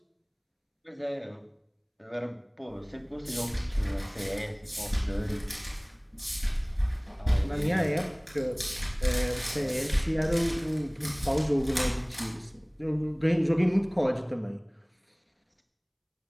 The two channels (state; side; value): identical; both; correlation 1.00